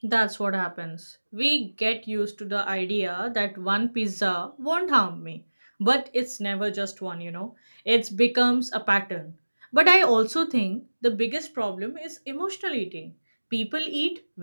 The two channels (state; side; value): inverted; both; correlation -1.00